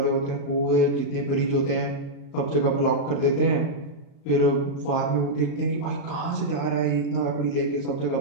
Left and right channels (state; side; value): late; right; 35 ms